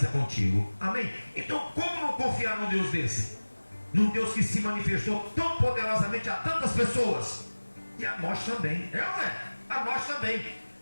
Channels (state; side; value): inverted; both; correlation -1.00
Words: contigo. Amém? Então como não confiar num Deus desse? Num Deus que se manifestou tão poderosamente a tantas pessoas. E a nós também. É ou não é? A nós também.